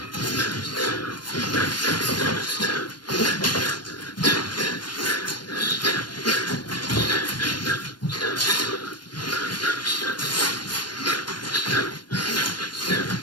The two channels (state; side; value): late; right; 0.71 ms